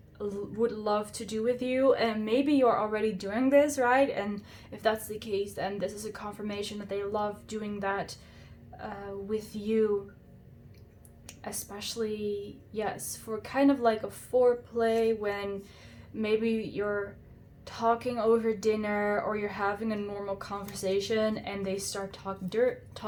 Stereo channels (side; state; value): both; identical; correlation 1.00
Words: would love to do with you, and maybe you're already doing this, right? And if that's the case, then this is a confirmation that they love doing that with you, especially, yes, for kind of like a foreplay, when maybe you're talking over dinner or you're having a normal conversation and they start